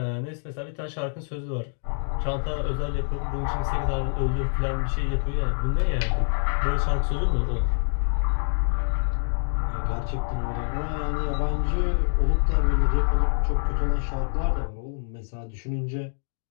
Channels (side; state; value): right; silent; digital silence